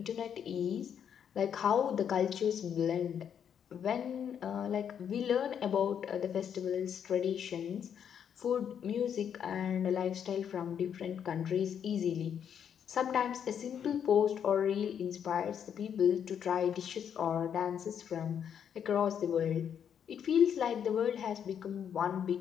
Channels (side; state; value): right; quieter; 8.4 dB